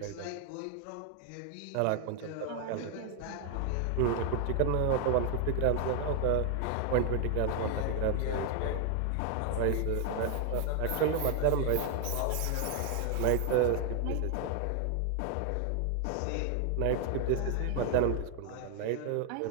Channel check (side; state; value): both; different; correlation 0.00